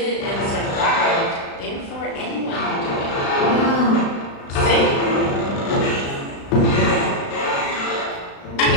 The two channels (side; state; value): right; late; 35 ms